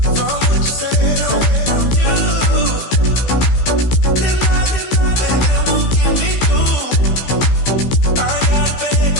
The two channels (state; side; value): late; right; 16 ms